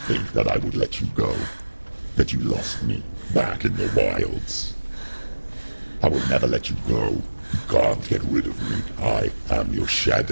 that I would let you go? That you lost me back in the wilds? I will never let you go. You can't get rid of me. I am your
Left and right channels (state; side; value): inverted; both; correlation -1.00